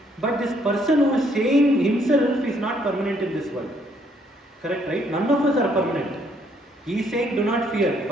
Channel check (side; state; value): both; normal; correlation 0.68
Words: But this person who is saying himself is not permanent in this world. Correct, right? None of us are permanent. He is saying do not fear,